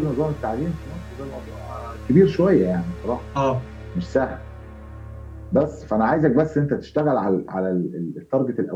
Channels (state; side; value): identical; both; correlation 1.00